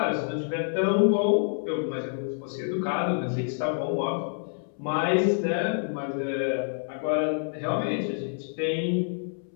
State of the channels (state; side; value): silent; right; 60 dB below the other